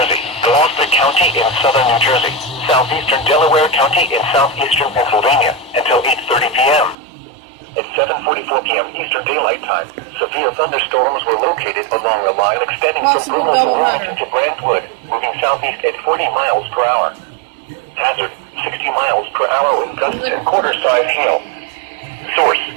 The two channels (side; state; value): left; drops out; at 7.0 s